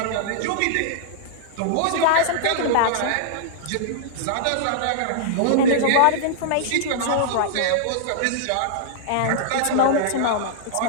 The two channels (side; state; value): both; different; correlation -0.01